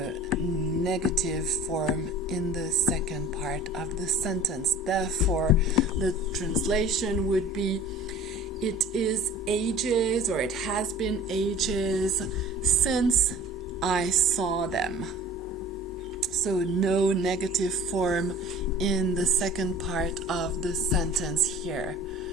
negative form in the second part of the sentence. Therefore, the translation would be, it is ages, or it has been ages since I saw them. So no negative form in the second part of the sentence here.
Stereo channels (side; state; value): both; normal; correlation 0.45